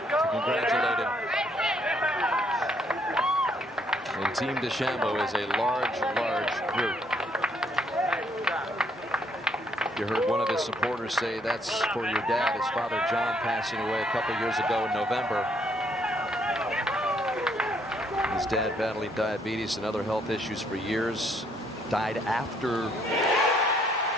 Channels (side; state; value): both; normal; correlation 0.69